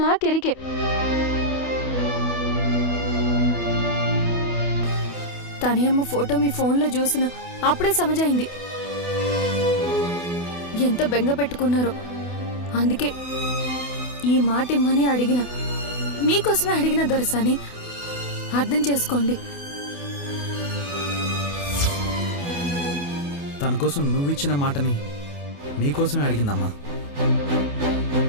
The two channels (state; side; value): late; right; 28 ms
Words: నాకెరికే. తనయమ్మ ఫోటో మీ ఫోన్లో చూసిన అప్పుడే సమజైంది ఎంత బెంగ పెట్టుకున్నారో. అందుకే ఈ మాట ఇమ్మని అడిగిన, మీకోసమే అడిగిన దొరసాని. అర్థం చేసుకోండి. తన కోసం నువ్విచ్చిన మాటని నీకోసమే అడిగిందమ్మా.